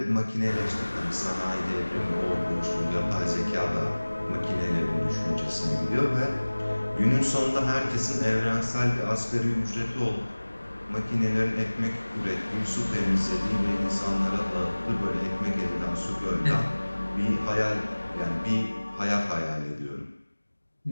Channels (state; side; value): inverted; both; correlation -1.00